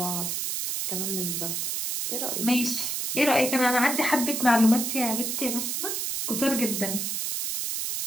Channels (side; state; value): right; noise; hiss, 1 dB below the sound